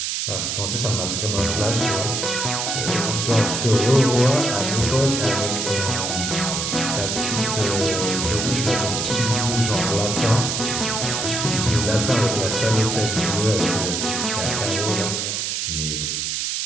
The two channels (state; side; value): noise; right; hiss, 1 dB below the sound